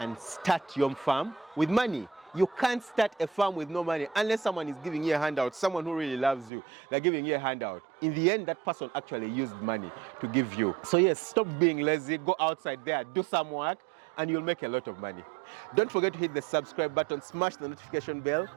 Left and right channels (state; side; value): drops out; left; at 6.5 s